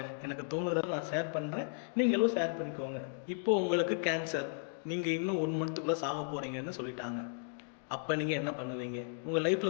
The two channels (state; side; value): silent; right; digital silence